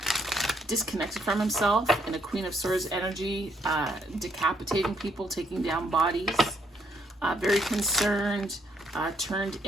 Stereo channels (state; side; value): normal; both; correlation 0.72